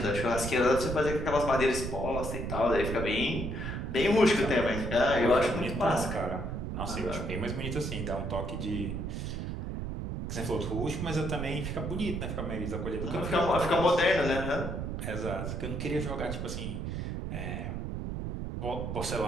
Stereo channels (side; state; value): right; noise; rumble, 4 dB below the sound